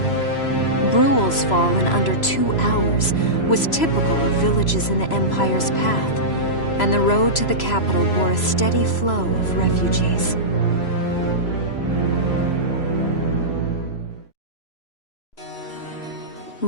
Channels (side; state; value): right; late; 3.0 ms